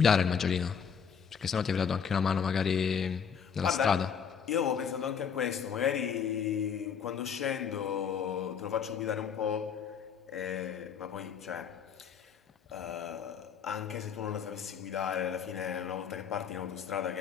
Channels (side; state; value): right; quieter; 7.0 dB